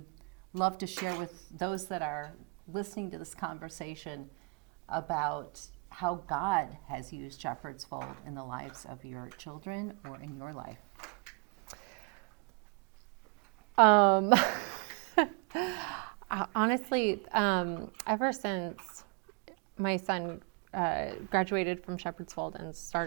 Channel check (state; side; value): quieter; left; 33.2 dB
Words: love to share with those that are listening to this conversation about how God has used Shepherd's Fold in the lives of your children or in your life. Honestly, ever since my son graduated from Shepherd's Fold and